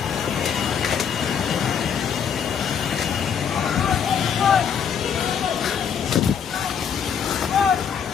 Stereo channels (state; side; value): quieter; right; 7.5 dB